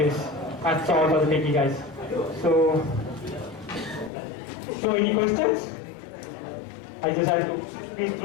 That's all for the techie guys. So any questions? I just had to speed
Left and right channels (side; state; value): right; drops out; at 4.1 s